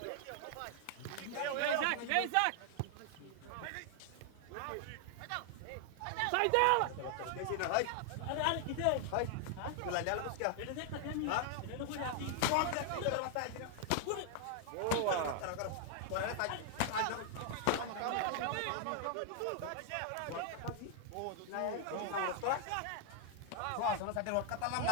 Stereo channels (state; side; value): different; both; correlation 0.00